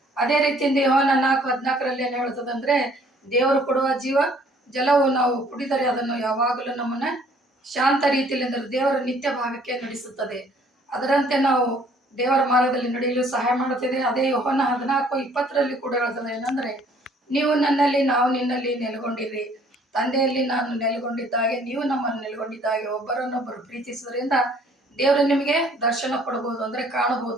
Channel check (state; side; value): normal; both; correlation 0.59